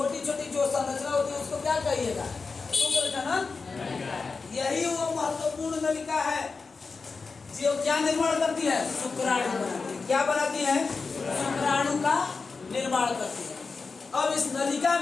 छोटी जो संरचना होती है उसको क्या कहिएगा? शुक्र जनन। यही वो महत्वपूर्ण नलिका है जो क्या निर्माण करती है? शुक्राणु बनाती है। क्या बनाती है? शुक्राणु का निर्माण करती है। अब इस नलिका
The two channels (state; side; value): quieter; right; 4.5 dB